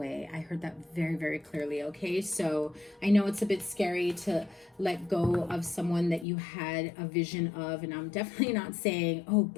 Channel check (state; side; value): drops out; right; at 6.2 s